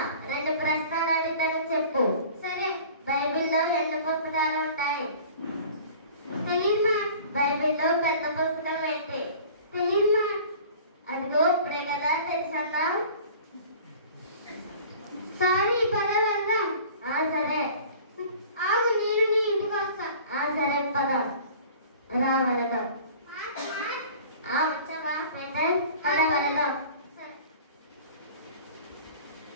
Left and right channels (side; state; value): both; inverted; correlation -0.45